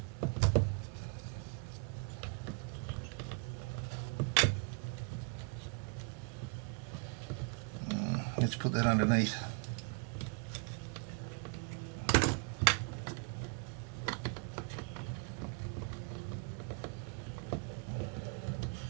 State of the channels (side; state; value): left; quieter; 35.6 dB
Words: Let's put that underneath.